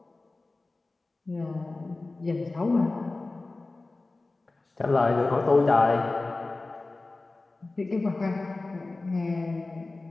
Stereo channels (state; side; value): quieter; right; 3.3 dB